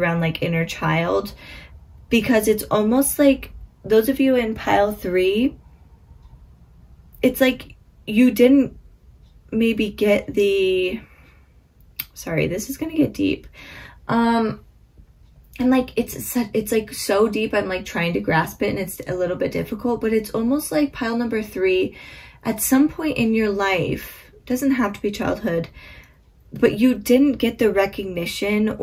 like inner child, because it's almost like those of you in pile 3, it's like you didn't maybe get the, sorry, this is going to get deep. And like it's like so deep, I'm like trying to grasp it and it's a little bit difficult, but it's almost like pile number 3, at some point in your life, doesn't have to be childhood, but you didn't get the recognition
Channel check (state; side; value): identical; both; correlation 1.00